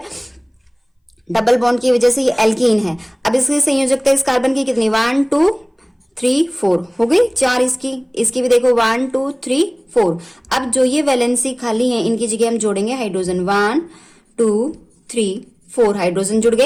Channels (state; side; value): identical; both; correlation 1.00